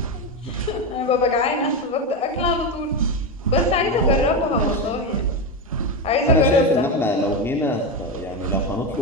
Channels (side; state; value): both; normal; correlation 0.13